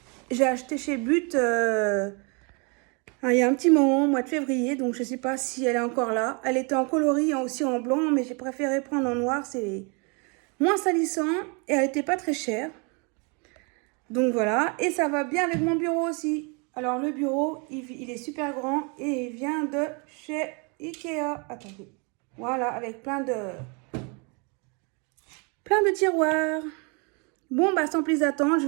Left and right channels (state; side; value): quieter; left; 33.2 dB